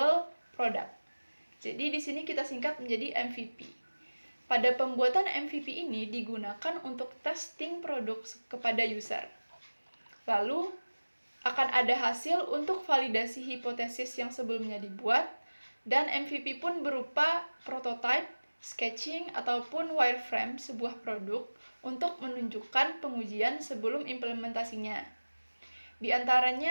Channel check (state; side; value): inverted; both; correlation -1.00